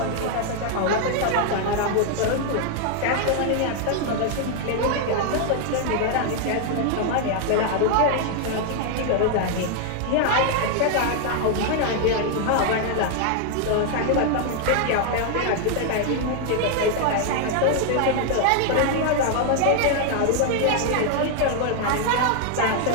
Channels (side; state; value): both; different; correlation 0.00